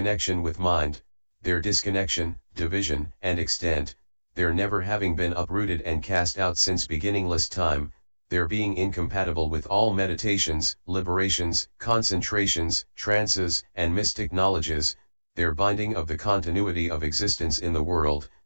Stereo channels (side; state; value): both; inverted; correlation -1.00